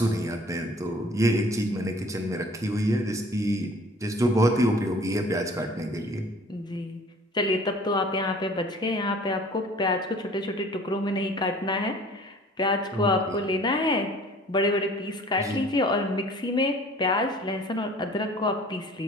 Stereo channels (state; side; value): normal; both; correlation 0.50